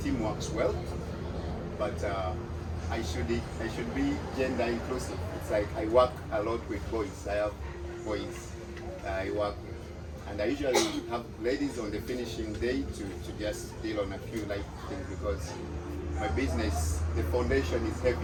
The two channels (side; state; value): both; identical; correlation 1.00